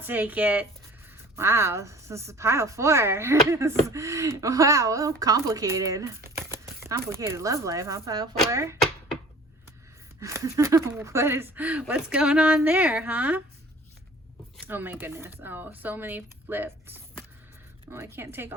it. Wow, this is pile 4. Wow, well, complicated. Complicated love life, huh, pile 4? What's going on there, huh? Oh my goodness. Oh, so many flipped. Oh, I can't take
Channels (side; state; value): both; normal; correlation 0.47